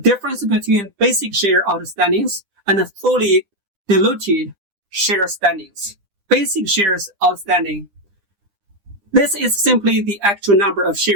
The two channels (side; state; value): left; late; 9.9 ms